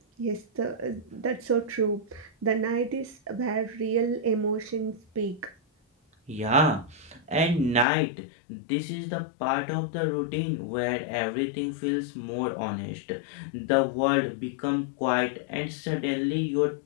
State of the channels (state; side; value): drops out; right; at 7.9 s